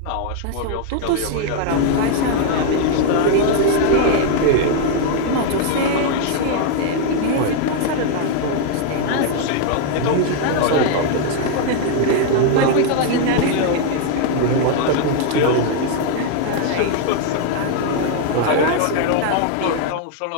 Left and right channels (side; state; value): both; different; correlation 0.00